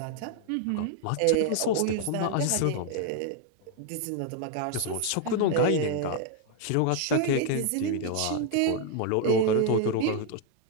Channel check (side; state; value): both; different; correlation 0.00